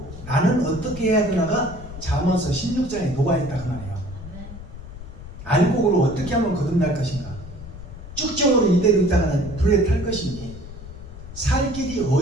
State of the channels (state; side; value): noise; left; rumble, 13 dB below the sound